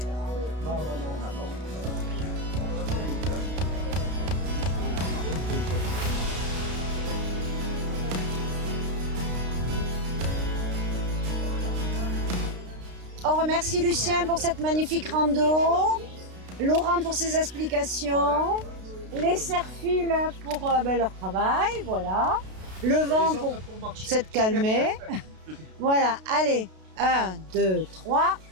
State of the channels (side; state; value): left; late; 32 ms